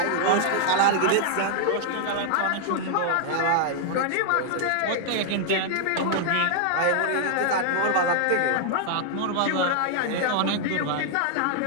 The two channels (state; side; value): different; both; correlation -0.01